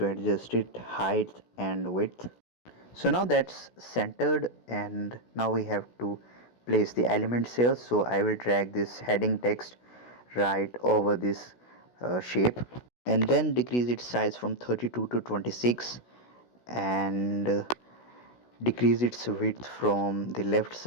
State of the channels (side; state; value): right; late; 16 ms